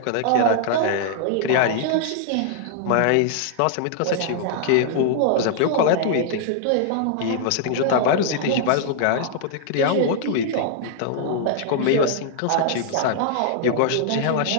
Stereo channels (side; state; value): both; different; correlation -0.01